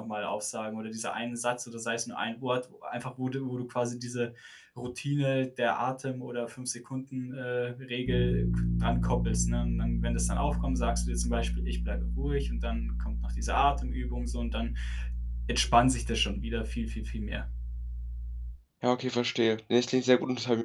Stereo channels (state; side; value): identical; both; correlation 1.00